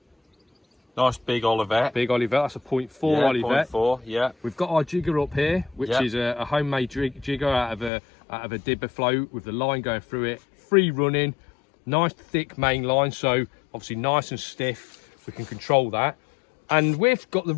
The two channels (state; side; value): drops out; right; at 7.9 s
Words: Nice big Olivet. Big Olivet, that's a 0.4 Olivet. 0.4, yeah. We've got our jigger up here, which is a homemade jigger out of a dibber float with the line going through it. Free running, nice thick main line, so obviously nice and stiff. We can control that. And we've got the